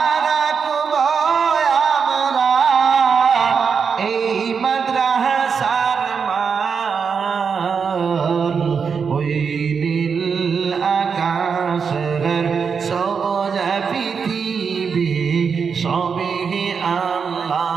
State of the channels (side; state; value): left; quieter; 6.1 dB